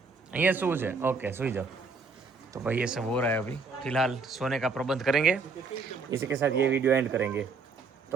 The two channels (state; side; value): quieter; left; 4.3 dB